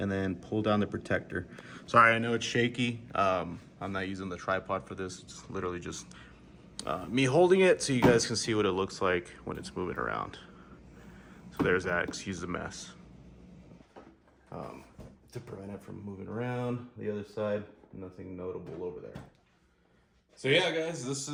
then pull down the protector. Sorry, I know it's shaky. I'm not using the tripod for this. It's literally just me holding it so you guys can see what it looks like when it's moving around. So there's that, excuse the mess. To prevent it from moving around. The other side, nothing notable over there. So yeah, guys, this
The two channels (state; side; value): identical; both; correlation 1.00